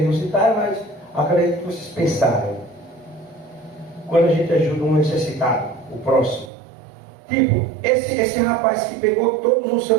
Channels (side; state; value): left; drops out; at 6.5 s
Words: não citaram, mas acredito que vocês pensaram. Quando a gente ajuda um necessitado, o próximo. Tipo, esse rapaz que pegou todos o